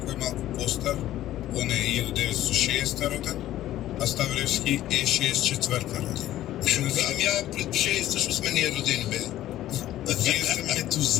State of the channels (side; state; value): right; quieter; 13.8 dB